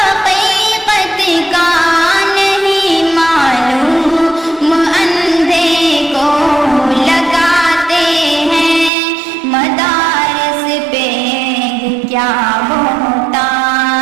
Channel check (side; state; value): left; drops out; at 8.9 s